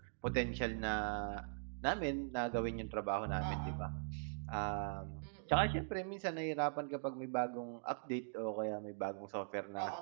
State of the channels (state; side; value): silent; left; digital silence